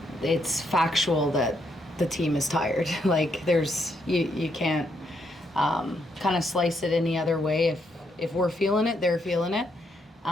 it's factual that the team is tired. Like, you can't kind of slice it any other way. If we're feeling it, they're feeling it.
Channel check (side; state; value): both; normal; correlation 0.76